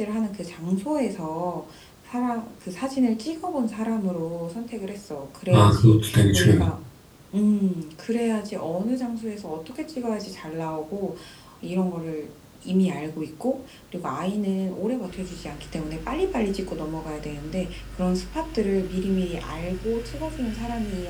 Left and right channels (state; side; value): identical; both; correlation 1.00